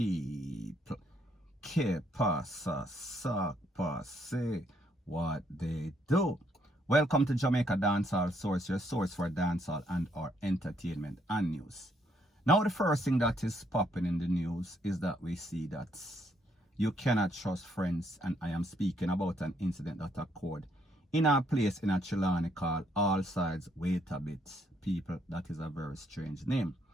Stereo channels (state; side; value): normal; both; correlation 0.71